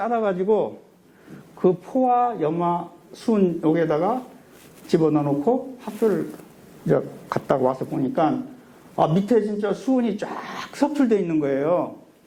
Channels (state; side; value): identical; both; correlation 1.00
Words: 그 포화, 염화, 수은 여기에다가 집어넣어 놓고 학교를 이제 갔다가 와서 보니까 밑에 진짜 수은이 쫙 석출되어 있는 거예요.